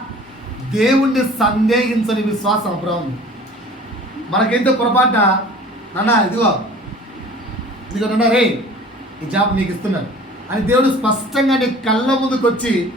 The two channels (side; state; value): both; normal; correlation 0.46